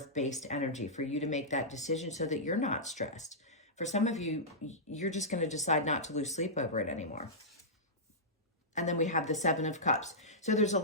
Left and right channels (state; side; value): normal; both; correlation -0.14